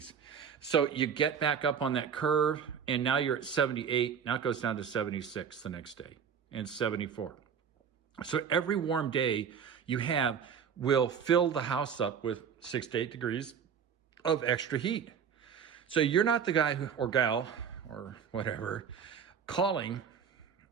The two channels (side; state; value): left; quieter; 7.3 dB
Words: So you get back up on that curve, and now you're at 78. Now it goes down to 76 the next day, and 74. So every warm day you have will fill the house up with 6 to 8 degrees of extra heat. So you're not the guy or gal or whatever calling